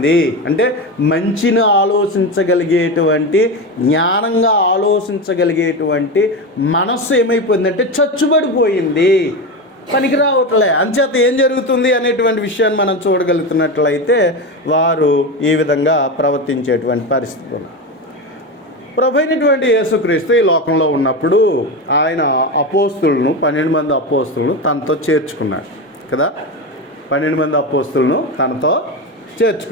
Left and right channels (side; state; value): both; normal; correlation 0.19